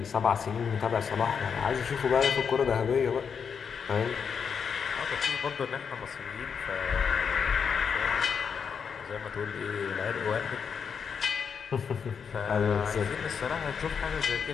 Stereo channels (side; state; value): right; quieter; 6.6 dB